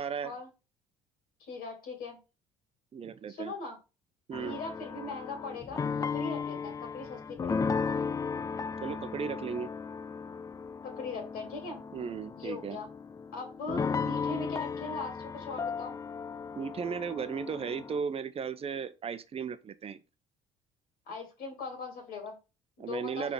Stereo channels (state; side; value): normal; both; correlation 0.57